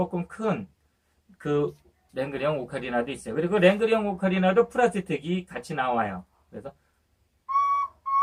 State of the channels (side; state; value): both; identical; correlation 1.00